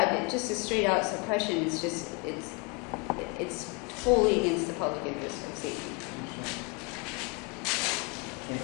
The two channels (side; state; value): right; quieter; 31.4 dB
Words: just a straight out suppression is just it's totally against the public interest of safety.